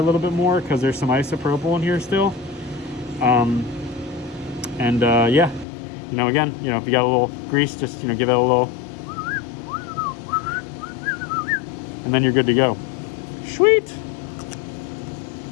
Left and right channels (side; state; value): right; drops out; at 5.7 s